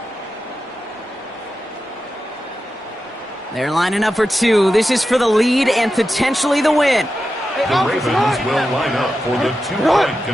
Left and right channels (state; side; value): normal; both; correlation 0.90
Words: They're lining up for 2. This is for the lead and potentially the win. The Ravens will line up for the 2-point